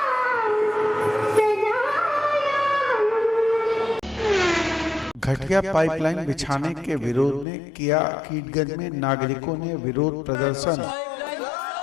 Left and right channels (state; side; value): drops out; right; at 7.5 s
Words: घटिया पाइपलाइन बिछाने के विरोध में किया कीटगंज में नागरिकों ने विरोध प्रदर्शन।